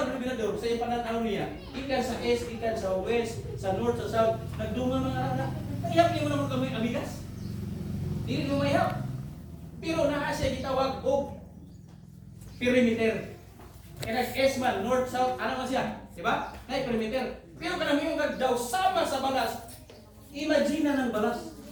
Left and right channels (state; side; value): identical; both; correlation 1.00